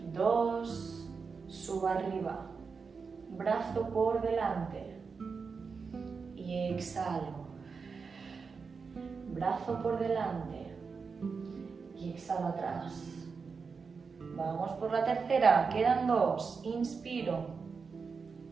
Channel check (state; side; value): quieter; left; 5.2 dB